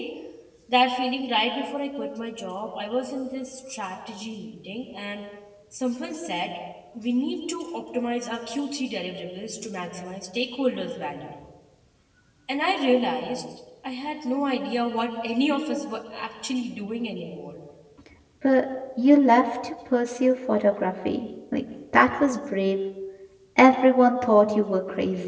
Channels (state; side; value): identical; both; correlation 1.00